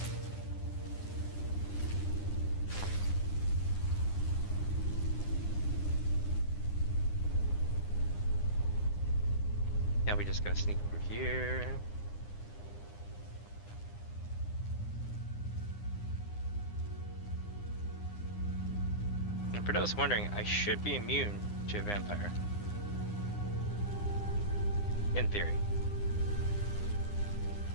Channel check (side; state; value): right; late; 9.8 ms